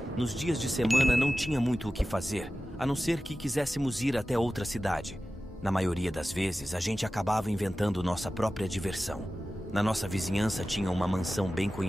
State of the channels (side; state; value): both; normal; correlation 0.94